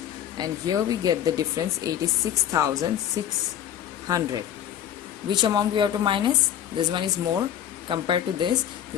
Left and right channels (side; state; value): right; quieter; 10.3 dB